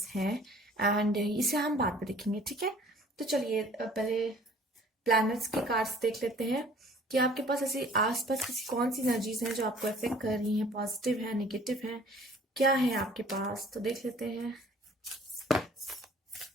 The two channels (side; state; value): both; normal; correlation 0.52